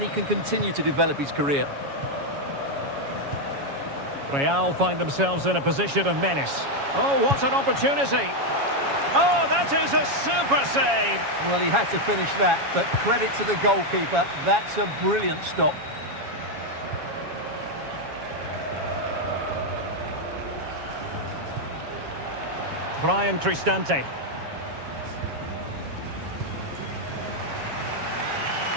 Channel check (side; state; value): left; late; 7.2 ms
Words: he can continue to develop his career. Real find themselves in a position of menace. Oh, what an opportunity! Oh, that is a super save! Well, he had to finish that, but credit to the goalkeeper. That's a brilliant stop. Brian Cristante.